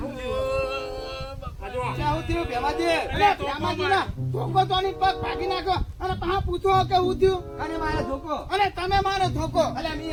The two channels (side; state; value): both; identical; correlation 1.00